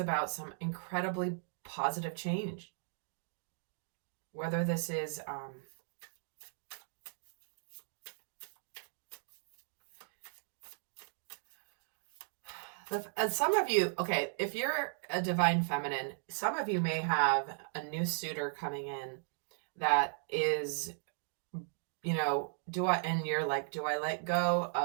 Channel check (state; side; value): silent; left; digital silence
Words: some incredibly positive change. Whether this is some of you, okay, if you're a divine feminine, some of you may have a new suitor coming in that is, and you're like, do I let go